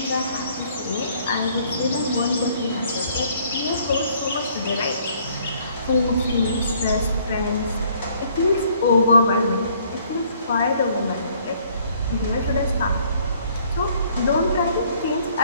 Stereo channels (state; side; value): inverted; both; correlation -0.62